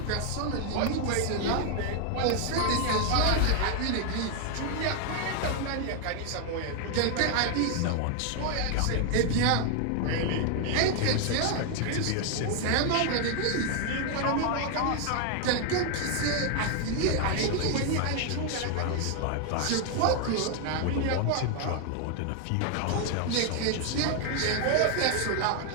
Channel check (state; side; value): different; both; correlation 0.00